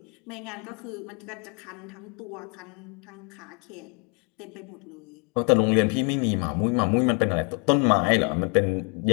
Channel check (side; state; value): right; quieter; 36.7 dB